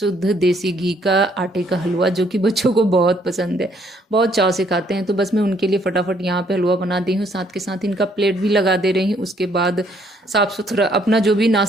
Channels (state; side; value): normal; both; correlation 0.67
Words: देसी घी का आटे का हलवा, जो कि बच्चों को बहुत पसंद है, बहुत चाव से खाते हैं। तो बस मैं उनके लिए फटाफट यहाँ पे हलवा बना दी हूँ, साथ के साथ इनका प्लेट भी लगा दे रही हूँ। उसके बाद साफ़ सुथरा अपना जो भी